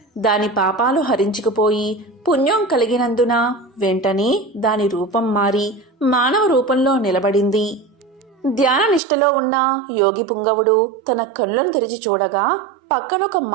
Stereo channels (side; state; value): left; drops out; at 9.0 s